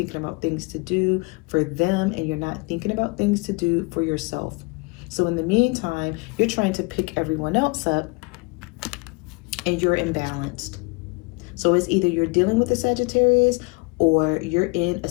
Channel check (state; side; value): quieter; right; 27.9 dB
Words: about things to do for them, and you're not thinking about things to do for yourself. So in the meantime, you're trying to pick everyone else up, and you're imbalanced. So it's either you're dealing with a Sagittarius, or you're in a